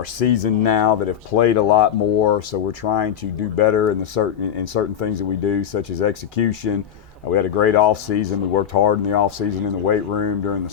seasoned now, that have played a lot more. So we're trying to do better in certain things that we do, such as execution. We had a great off season. We worked hard in the off season in the weight room during the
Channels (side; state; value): right; quieter; 9.0 dB